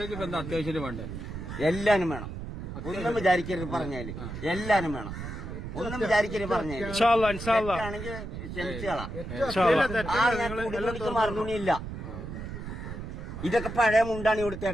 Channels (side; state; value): right; noise; rumble, 8 dB below the sound